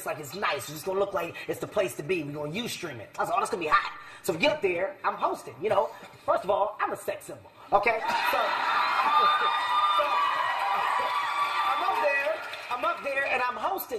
like it's nice. It's just gonna look like it's the place to be. We're gonna Ustream it. I was like, oh, that's gonna be hot. So we get up there, I'm hosting, you know. First of all, I'm a sex symbol, okay? So I'm up there and I'm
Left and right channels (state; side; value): identical; both; correlation 1.00